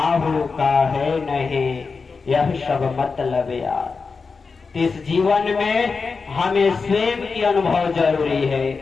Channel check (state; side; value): quieter; right; 4.7 dB